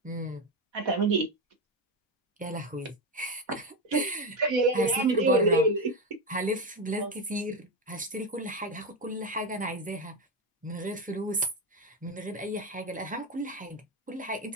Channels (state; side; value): normal; both; correlation 0.12